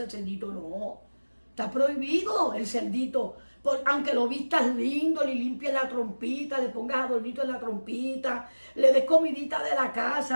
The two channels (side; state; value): both; inverted; correlation -1.00